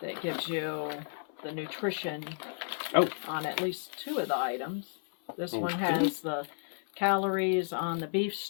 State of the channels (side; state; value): right; silent; 56 dB below the other